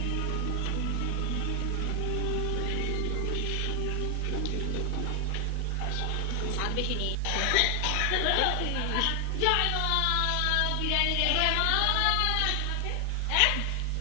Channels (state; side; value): different; both; correlation 0.00